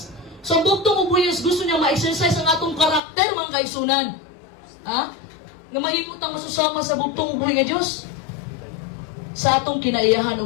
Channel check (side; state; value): right; drops out; at 3.0 s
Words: So, ang bugtong ubuyos, gusto niya ma-exercise ang atong karakter, mga kaigsunan. Ha? Nga mahimutang masusama sa bugtong ubuhay nga Diyos. Sa atong kinaiyahan o